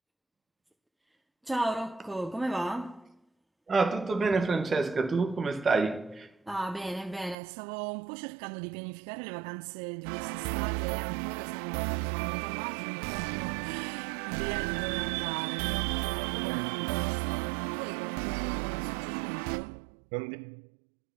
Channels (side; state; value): left; drops out; at 7.4 s